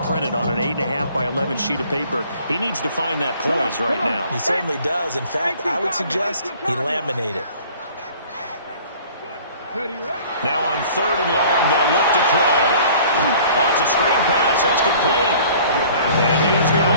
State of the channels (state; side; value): inverted; both; correlation -0.51